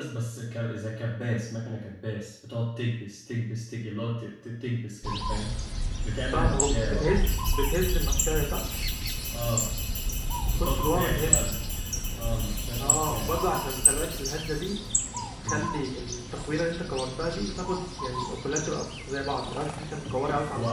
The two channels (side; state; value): both; identical; correlation 1.00